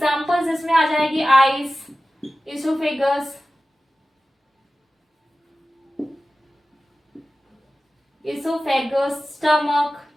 इसमें आ जाएगी। Eyes, oesophagus, stomach,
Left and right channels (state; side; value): normal; both; correlation 0.96